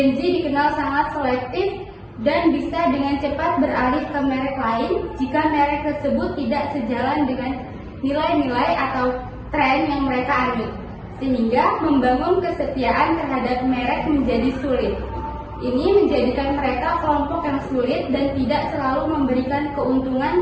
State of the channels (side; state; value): both; identical; correlation 1.00